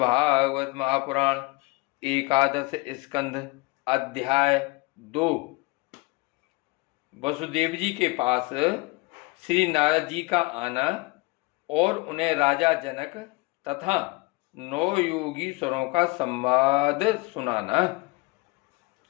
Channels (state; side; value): quieter; right; 24.8 dB